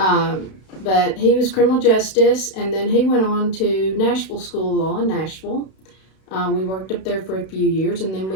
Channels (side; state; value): right; late; 32 ms